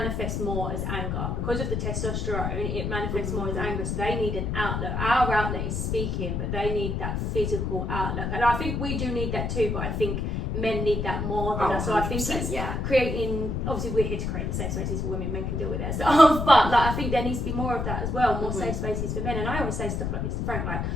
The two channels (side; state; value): left; noise; rumble, 1 dB below the sound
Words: more as anger because of the testosterone. It manifests more as anger, so they need an outlet. Our outlet is speaking, but they need that physical outlet, and I think we do need that too. But I think men need that more than us. So I think it's creating. Obviously, we're here to create the safe spaces for women. Men can deal with their stuff, but like I think there needs to be more of that as well. More safe spaces for men. And I always say stuff like this to Frank, like,